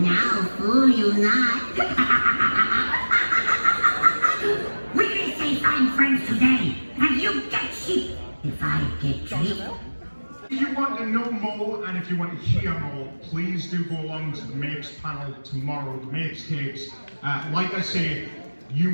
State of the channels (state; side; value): inverted; both; correlation -1.00